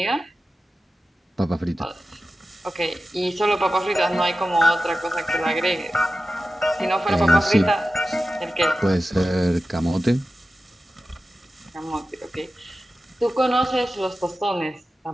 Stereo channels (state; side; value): normal; both; correlation 0.93